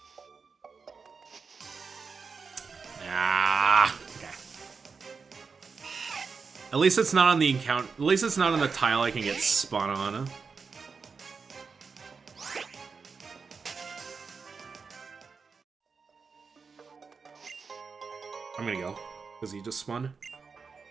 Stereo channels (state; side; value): quieter; left; 5.2 dB